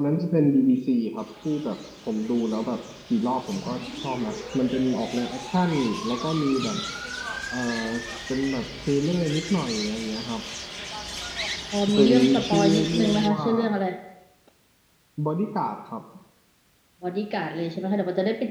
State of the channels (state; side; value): identical; both; correlation 1.00